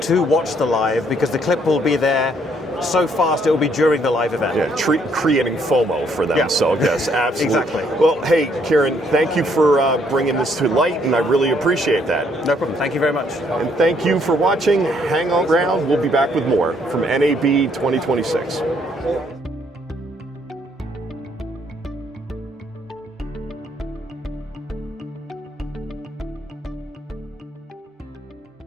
to watch the live, because the clip will be there so fast it will be during the live event. Yeah, creating FOMO for them. Yeah. So yes, absolutely. Exactly. Well, hey, Kiran, thank you for bringing this to light, and I really appreciate that. No problem. Thank you very much. And thank you for watching. Hang on around. We'll be back with more from NAB 2026.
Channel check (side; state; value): both; normal; correlation 0.68